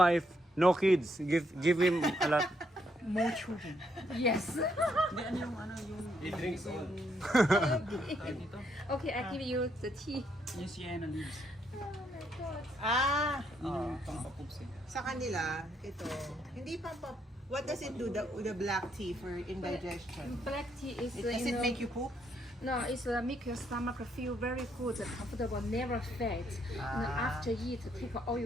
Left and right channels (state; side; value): normal; both; correlation 0.74